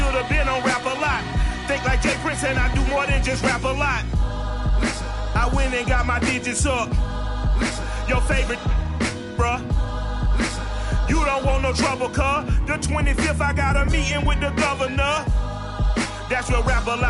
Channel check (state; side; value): identical; both; correlation 1.00